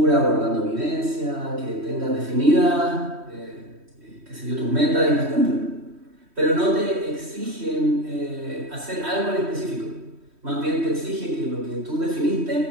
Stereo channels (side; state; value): left; late; 3.1 ms